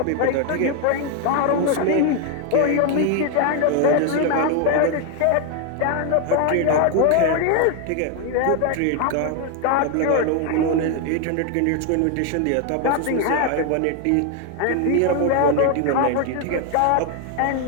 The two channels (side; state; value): both; different; correlation 0.01